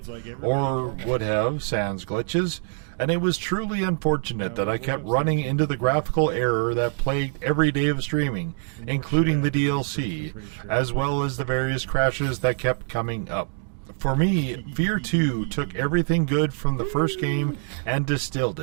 or would have, sans glitches, and it was truly unfortunate that I kept running into the graphical error that plagued every day of streaming, including the DLC, as well as the various crashes that kept coming up. For me, F.E.A.R 2 took everything good from the first game and distilled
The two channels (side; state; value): left; silent; digital silence